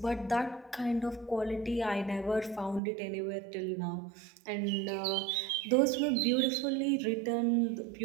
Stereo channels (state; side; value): drops out; left; at 2.8 s